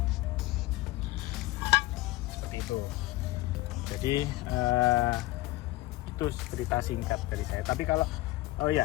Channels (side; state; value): right; quieter; 18.9 dB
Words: Seperti itu. Jadi itu cerita singkat dari saya. Tapi kalau